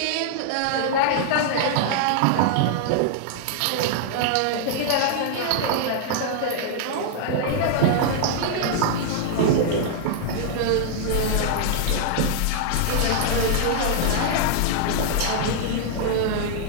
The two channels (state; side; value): different; both; correlation -0.01